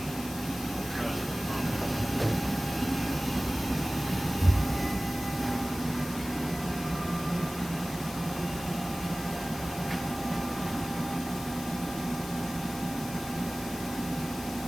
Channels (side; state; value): left; noise; hiss, 13 dB below the sound